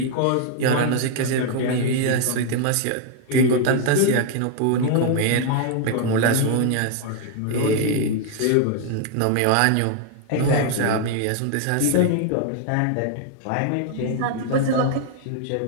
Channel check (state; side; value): different; both; correlation 0.00